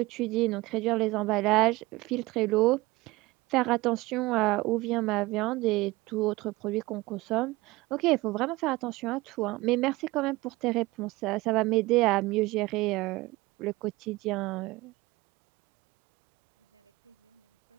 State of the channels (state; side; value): quieter; left; 20.7 dB